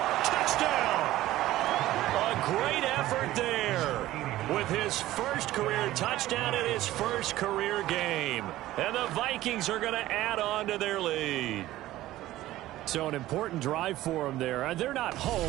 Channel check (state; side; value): quieter; left; 15.5 dB